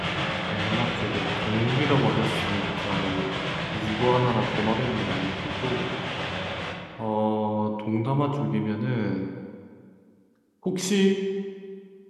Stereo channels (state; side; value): identical; both; correlation 1.00